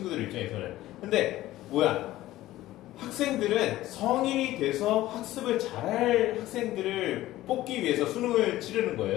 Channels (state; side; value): quieter; right; 15.6 dB